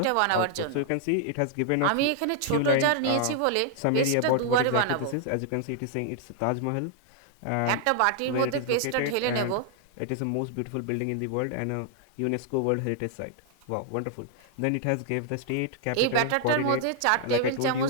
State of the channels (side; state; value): both; different; correlation -0.01